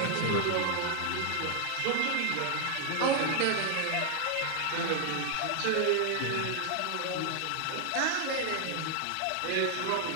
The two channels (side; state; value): both; different; correlation 0.00